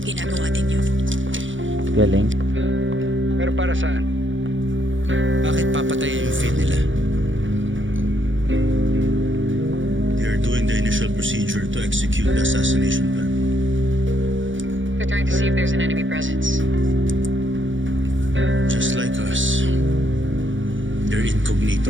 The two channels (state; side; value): late; left; 0.56 ms